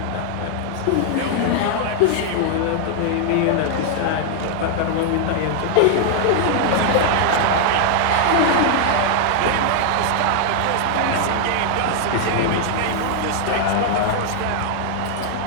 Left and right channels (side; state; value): both; different; correlation 0.00